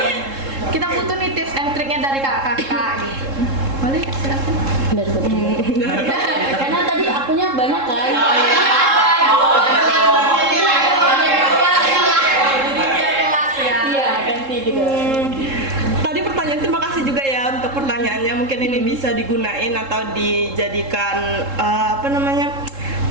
Kita butuh nih tips and triknya dari kakak-kakak gitu. Boleh silakan. Dari Putri. Karena tadi akunya banyak kan. Iya ganti gitu. Tadi pertanyaan, terima kasih juga ya untuk pertanyaannya. Mungkin ini bisa digunain atau dijadikan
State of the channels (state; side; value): late; left; 3.7 ms